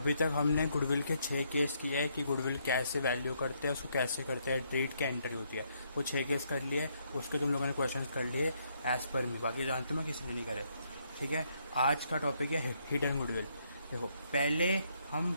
तक हमने गुडविल के 6 केस किए हैं कि गुडविल कैसे वैल्यू करते हैं, उसको कैसे करते हैं, ट्रेड क्या एंट्री होती है। वो 6 केस कर लिए, उसके तुम लोगों ने क्वेश्चंस कर लिए एज पर मी, बाकी जानते हो मैं किसी ने नहीं करे। ठीक है, आज का टॉपिक है हिडन गुडविल। देखो, पहले हम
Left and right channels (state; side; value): inverted; both; correlation -0.73